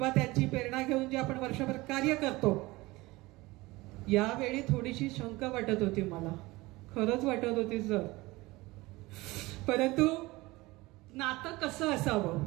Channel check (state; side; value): quieter; left; 20.9 dB